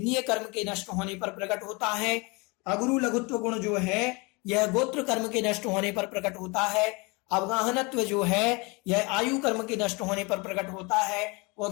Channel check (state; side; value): quieter; right; 27.8 dB